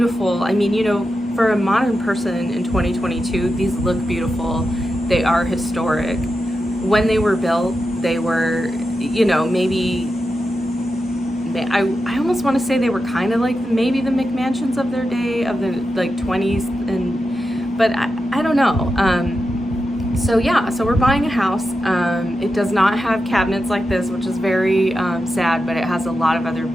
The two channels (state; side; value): normal; both; correlation 0.89